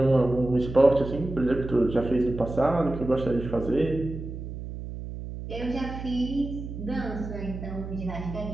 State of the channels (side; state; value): right; noise; hum, 9 dB below the sound